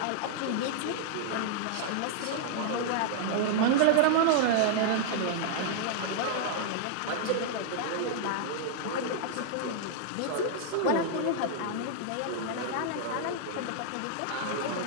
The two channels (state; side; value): different; both; correlation -0.01